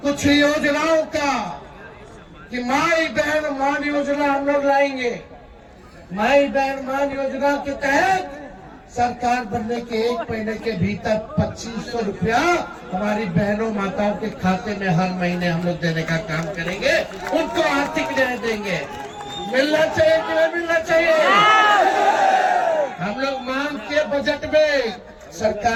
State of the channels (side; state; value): both; identical; correlation 1.00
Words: कुछ योजनाओं का कि माई बहन मान योजना हम लोग लाएंगे। माई बहन मान योजना के तहत सरकार बनने के 1 महीने के भीतर 2500 रुपया हमारी बहनों माताओं के खाते में हर महीने हम लोग देने का काम करेंगे, उनको आर्थिक न्याय देंगे। मिलना चाहिए कि नहीं मिलना चाहिए? हम लोग मांग के बजट में,